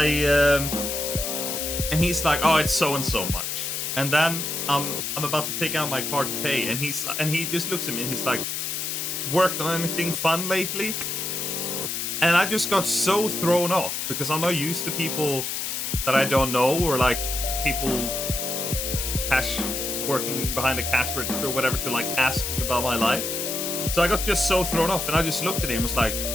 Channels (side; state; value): left; noise; hiss, 3 dB below the sound